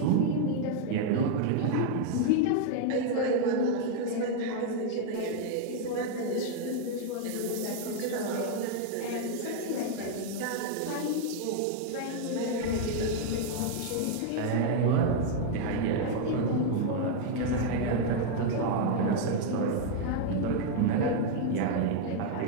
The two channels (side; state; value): both; different; correlation 0.00